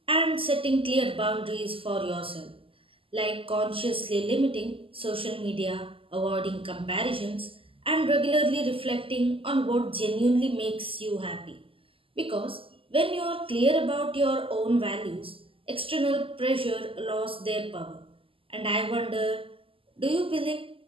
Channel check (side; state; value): left; late; 0.26 ms